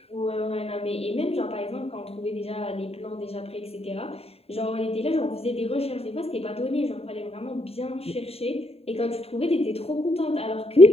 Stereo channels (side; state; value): right; late; 0.29 ms